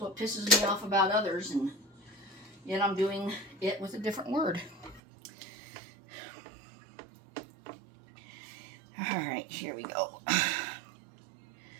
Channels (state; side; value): drops out; left; at 5.0 s